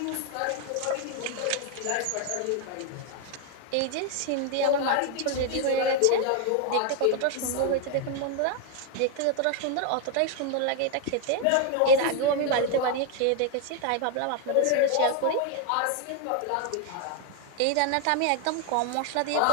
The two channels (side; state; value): both; different; correlation 0.01